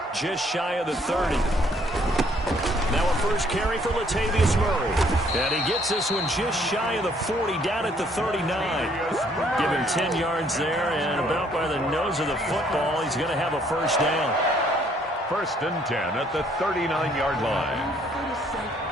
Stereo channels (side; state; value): both; normal; correlation 0.64